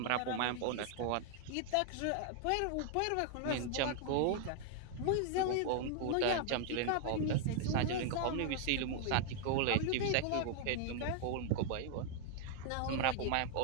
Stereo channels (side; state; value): both; different; correlation 0.00